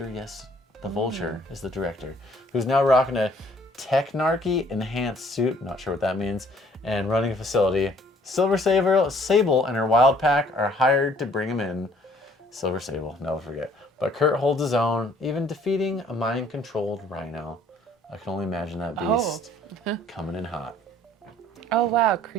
Yes, the Vulture is the director, who's now rocking a Technarchy enhanced suit. Not sure what that means, and running a facility. Silver Sable and her wild pack are hired to bring him in. Silver Sable, never forget. But Kurt holds his own, even defeating a mind-controlled Rhino. I can only imagine that beast coming in hot. Oh wow,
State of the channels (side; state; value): both; normal; correlation 0.59